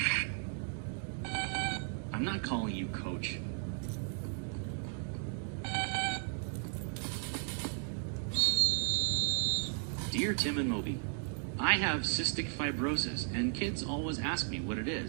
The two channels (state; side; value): silent; left; 54 dB below the other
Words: I'm not calling you coach. Dear Tim and Moby, I have cystic fibrosis, and kids always ask me what it